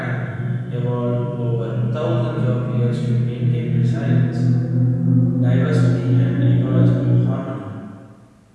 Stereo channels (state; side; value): identical; both; correlation 1.00